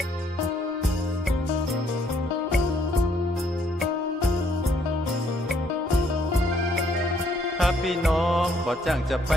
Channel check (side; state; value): both; normal; correlation 0.68